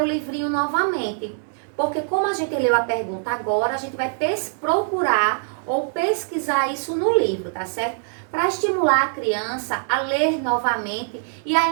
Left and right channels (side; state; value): left; silent; digital silence